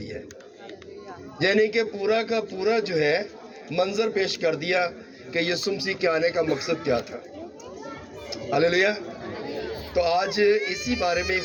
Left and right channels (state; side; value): identical; both; correlation 1.00